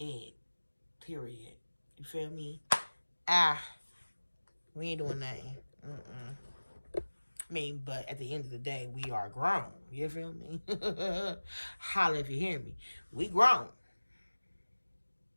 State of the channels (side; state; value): both; inverted; correlation -1.00